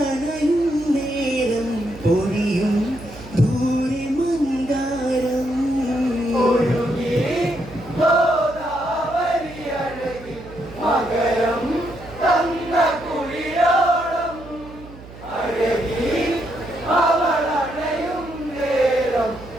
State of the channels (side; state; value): right; noise; hum, 17 dB below the sound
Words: നേരം പൊഴിയും ദൂരെ മന്ദാരം. ഒഴുകി ഗോദാവരി അഴകിൽ മകരം തന്ന കുളിരോളം അഴകി അവളണയും നേരം